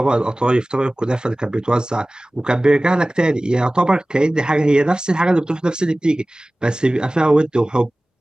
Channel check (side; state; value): both; normal; correlation 0.98